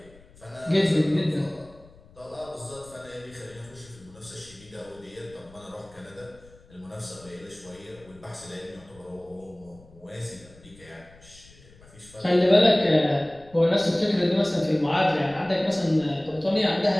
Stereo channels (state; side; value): noise; left; rumble, 24 dB below the sound